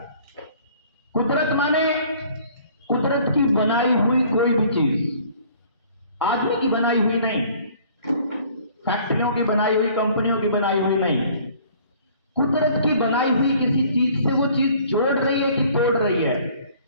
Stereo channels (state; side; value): inverted; both; correlation -0.55